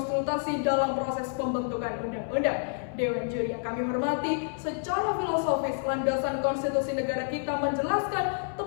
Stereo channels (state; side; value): silent; right; 59 dB below the other